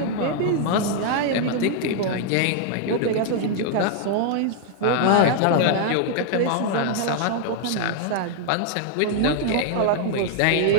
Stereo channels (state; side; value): different; both; correlation -0.01